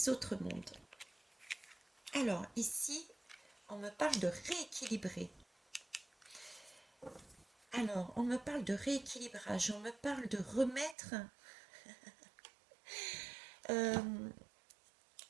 mondes. Alors ici, on me parle de rééquilibrer. Alors, on me parle de rééquilibrage, on me parle de remettre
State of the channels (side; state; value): left; drops out; at 11.0 s